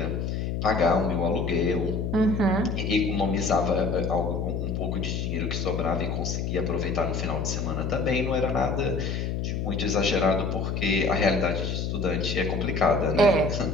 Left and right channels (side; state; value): left; noise; hum, 2 dB below the sound